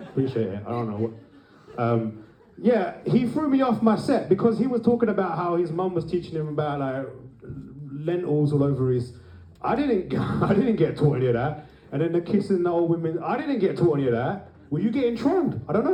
Appreciate it, I don't know what. Yeah, he threw me off my set because he was talking about how his mum was teaching him about like lentils all over his. I didn't get taught any of that. And then the kissing the old women, I didn't get taught any of that. Were you getting trolled? I don't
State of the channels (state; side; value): identical; both; correlation 1.00